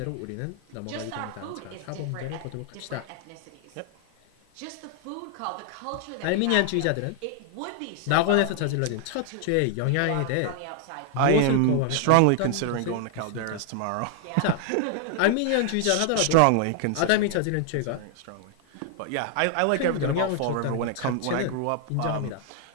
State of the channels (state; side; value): different; both; correlation 0.00